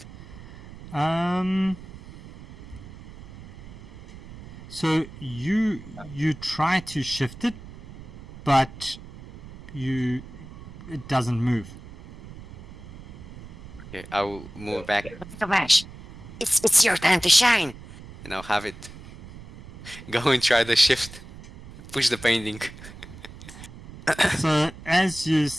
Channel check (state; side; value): noise; right; rumble, 16 dB below the sound